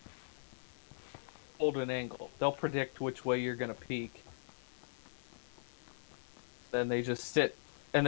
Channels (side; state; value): right; silent; digital silence